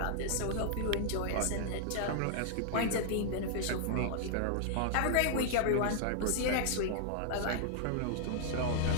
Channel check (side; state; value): both; different; correlation -0.01